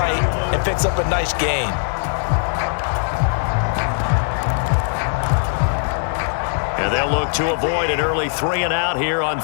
and picks up a nice gain. And they'll look to avoid an early 3 and out here on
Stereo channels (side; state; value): right; silent; 60 dB below the other